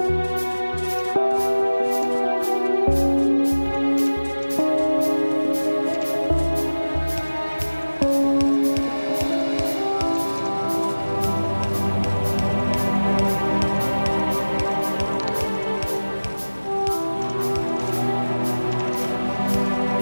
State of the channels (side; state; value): both; inverted; correlation -1.00